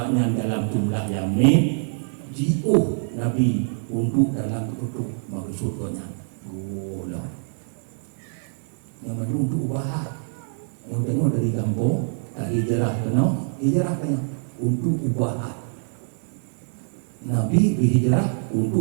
dalam jumlah Yamin jiuh Nabi untuk dalam keputuk maksudnya gula yang mana untuk ubah yang tanya dari kampung tak hijrah kena hijrah kena untuk ubah Nabi berhijrah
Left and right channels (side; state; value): left; silent; digital silence